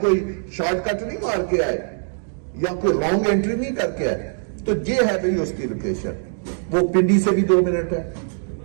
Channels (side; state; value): left; silent; 64 dB below the other